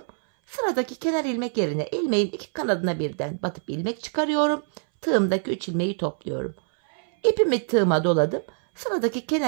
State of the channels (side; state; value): left; silent; 62 dB below the other